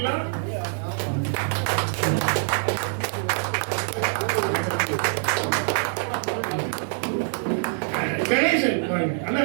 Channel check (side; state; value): left; silent; 62 dB below the other